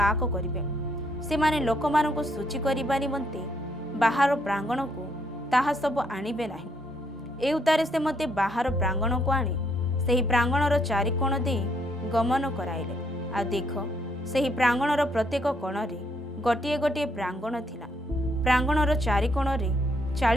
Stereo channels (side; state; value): both; normal; correlation 0.72